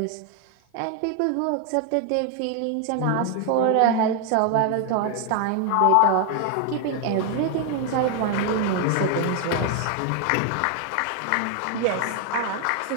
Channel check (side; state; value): both; different; correlation 0.00